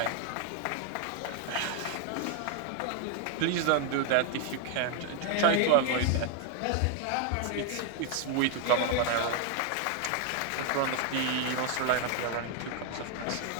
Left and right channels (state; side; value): different; both; correlation 0.01